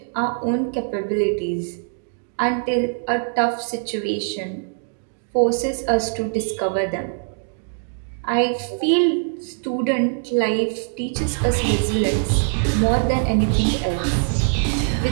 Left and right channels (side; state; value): left; silent; digital silence